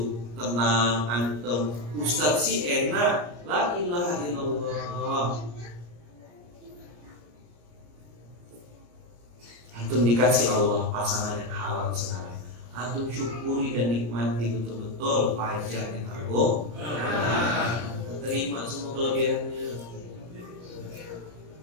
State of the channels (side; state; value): left; late; 34 ms